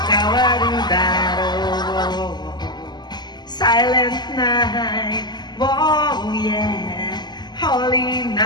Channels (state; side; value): late; right; 0.21 ms